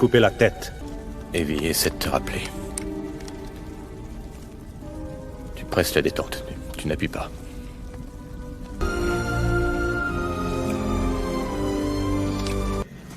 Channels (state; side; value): identical; both; correlation 1.00